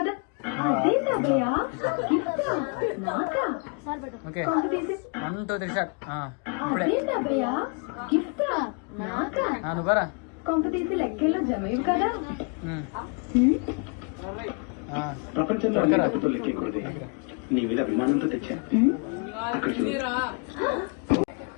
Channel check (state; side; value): quieter; right; 35.0 dB